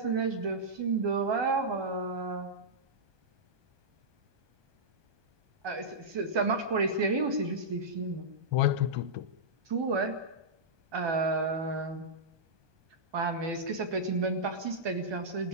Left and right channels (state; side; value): late; left; 1.2 ms